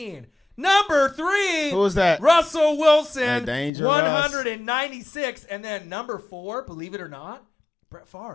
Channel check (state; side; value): drops out; right; at 3.7 s